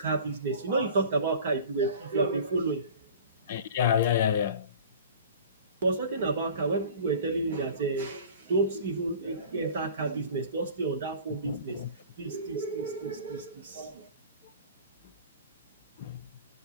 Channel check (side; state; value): both; inverted; correlation -0.41